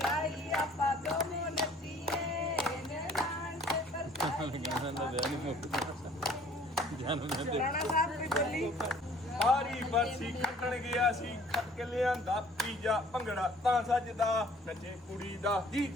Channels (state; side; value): normal; both; correlation 0.54